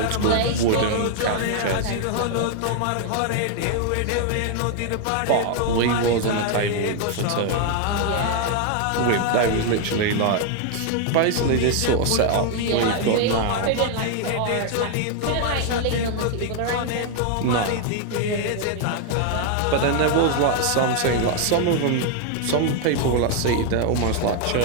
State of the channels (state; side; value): different; both; correlation 0.00